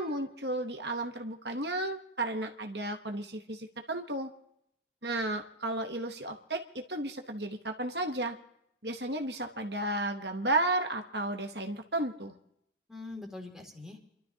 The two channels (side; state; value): both; normal; correlation -0.03